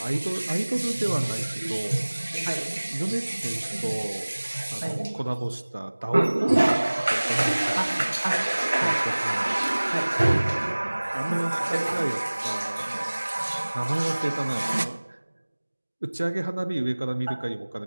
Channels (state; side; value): inverted; both; correlation -1.00